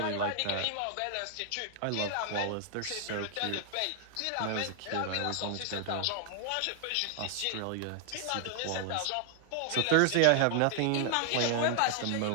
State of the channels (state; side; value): different; both; correlation 0.00